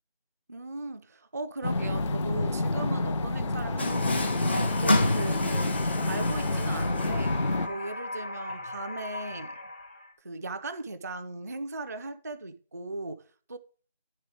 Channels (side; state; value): both; inverted; correlation -0.81